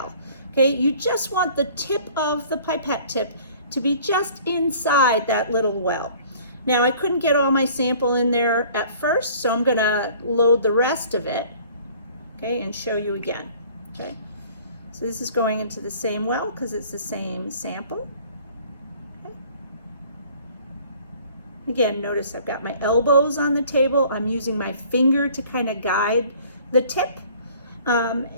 Okay, you just want the tip of the pipette tip to be just inside that little well. Now, I couldn't get all my sample in there at first, so I'm going to load the rest of it, okay, and show you again. Okay, so this is going into the same well because it's the same sample. Again, notice I've got my elbows on the table. I'm using my finger to kind of guide the tip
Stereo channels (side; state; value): both; inverted; correlation -0.52